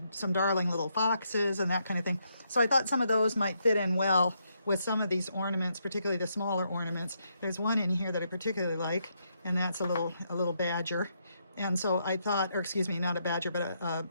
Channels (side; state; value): both; inverted; correlation -0.78